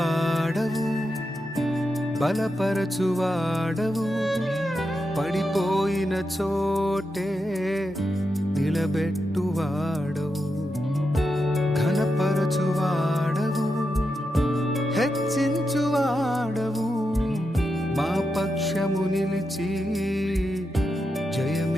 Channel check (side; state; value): both; normal; correlation 0.87